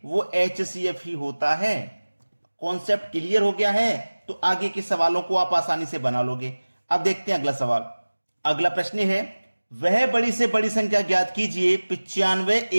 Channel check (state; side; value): inverted; both; correlation -1.00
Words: वो एचसीएफ ही होता है। कॉन्सेप्ट क्लियर हो गया है तो आगे के सवालों को आप आसानी से बना लोगे। अब देखते हैं अगला सवाल। अगला प्रश्न है, वह बड़ी से बड़ी संख्या ज्ञात कीजिए 95,